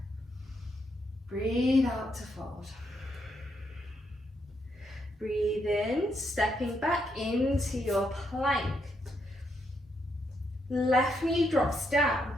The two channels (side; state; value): both; normal; correlation 0.78